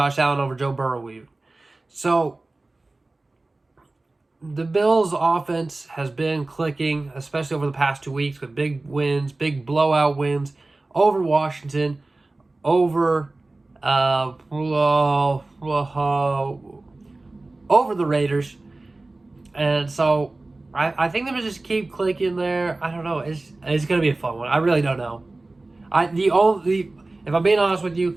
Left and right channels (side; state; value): left; quieter; 3.1 dB